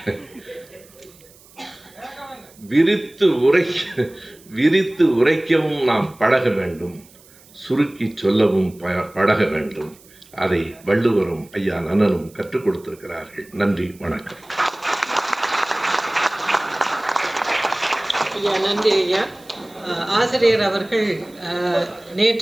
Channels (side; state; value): right; noise; hiss, 26 dB below the sound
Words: விரித்து உரைக்கவும் நாம் பழக வேண்டும், சுருக்கி சொல்லவும் பழக வேண்டும். அதை வள்ளுவரும் ஐயா நன்னனும் கற்றுக் கொடுத்திருக்கிறார்கள். நன்றி, வணக்கம். ஐயா நன்றி ஐயா. ஆசிரியர் அவர்கள்